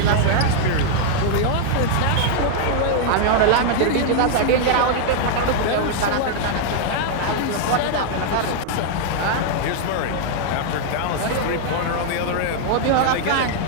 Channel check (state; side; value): different; both; correlation 0.00